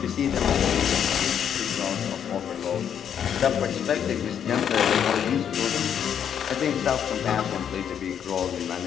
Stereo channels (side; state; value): right; quieter; 8.6 dB